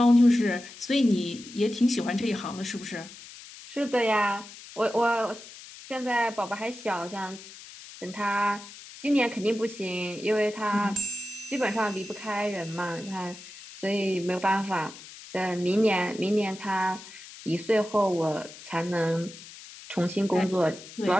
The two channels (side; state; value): left; noise; hiss, 16 dB below the sound